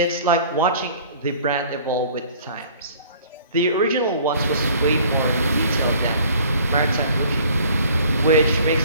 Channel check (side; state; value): both; inverted; correlation -0.51